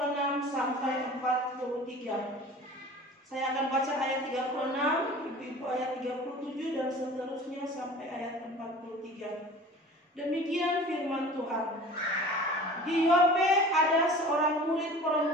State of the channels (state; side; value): normal; both; correlation 0.42